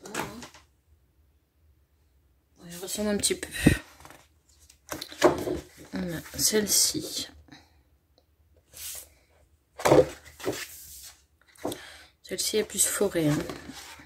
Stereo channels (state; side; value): identical; both; correlation 1.00